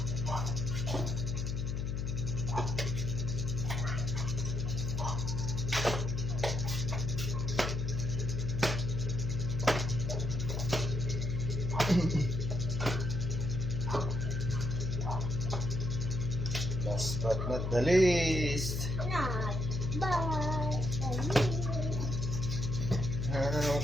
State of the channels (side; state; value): left; noise; hum, 1 dB below the sound